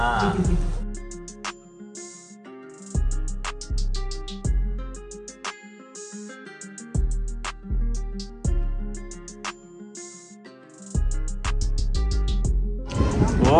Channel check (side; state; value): both; identical; correlation 1.00